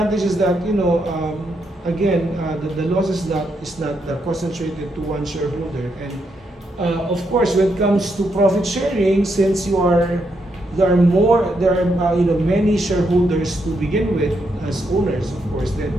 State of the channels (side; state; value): both; normal; correlation 0.79